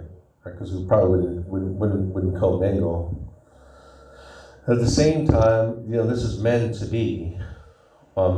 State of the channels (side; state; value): both; identical; correlation 1.00